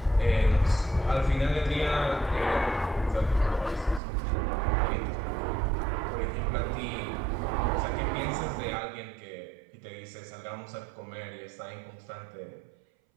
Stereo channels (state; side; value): drops out; left; at 4.0 s